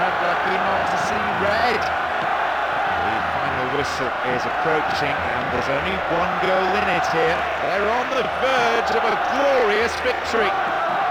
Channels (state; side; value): identical; both; correlation 1.00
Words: lucky not to see red. The final whistle is approaching and there's only one goal in it here. They're on the verge of a glorious victory.